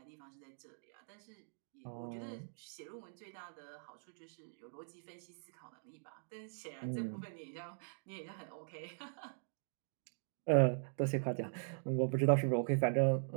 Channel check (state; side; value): silent; left; digital silence